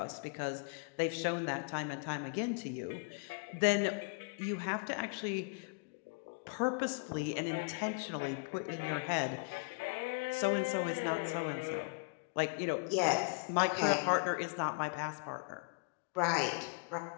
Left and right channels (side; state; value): right; quieter; 33.5 dB